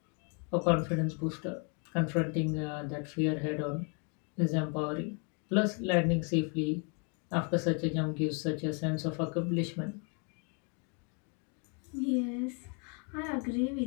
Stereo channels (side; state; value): right; quieter; 37.3 dB